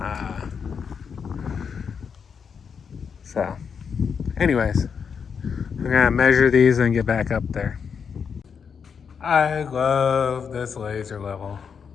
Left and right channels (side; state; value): right; quieter; 6.5 dB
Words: So, anyways, I'm gonna measure these and get back up there. I love this laser level.